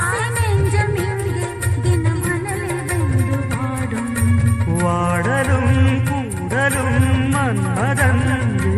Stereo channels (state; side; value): identical; both; correlation 1.00